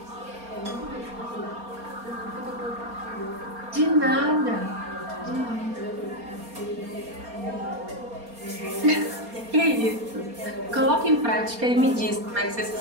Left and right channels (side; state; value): left; late; 4.3 ms